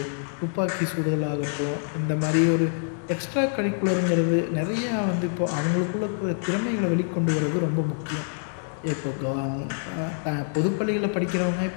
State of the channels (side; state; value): right; silent; digital silence